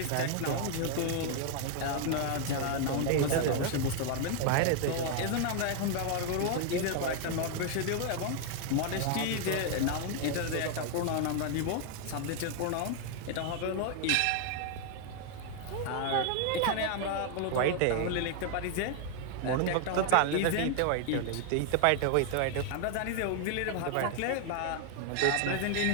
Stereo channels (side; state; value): both; different; correlation 0.00